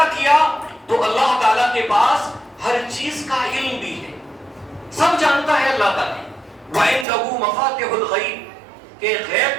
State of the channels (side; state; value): left; drops out; at 7.1 s